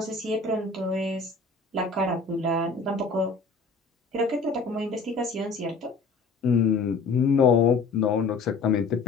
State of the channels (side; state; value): right; quieter; 4.1 dB